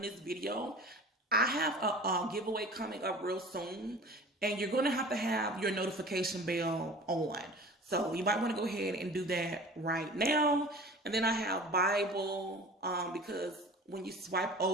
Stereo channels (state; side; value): normal; both; correlation 0.41